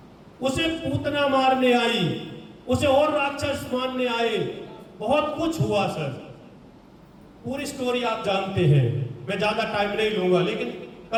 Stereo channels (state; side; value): identical; both; correlation 1.00